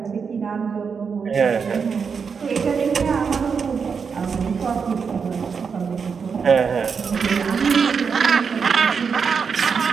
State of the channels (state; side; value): quieter; left; 5.9 dB